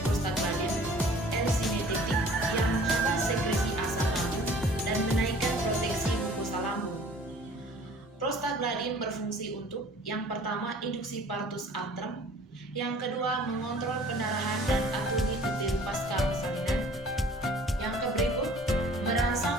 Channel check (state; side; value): normal; both; correlation 0.50